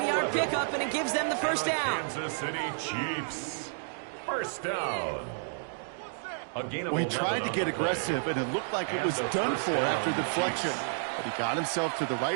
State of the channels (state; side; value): silent; left; digital silence